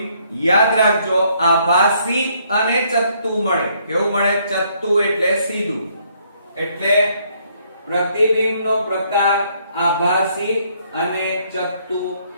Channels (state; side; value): inverted; both; correlation -0.68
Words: યાદ રાખજો આભાસી અને ચત્તુ મળે કેવું મળે ચત્તુ એટલે સીધું એટલે પ્રતિબિંબનો પ્રકાર આભાસી અને ચત્તુ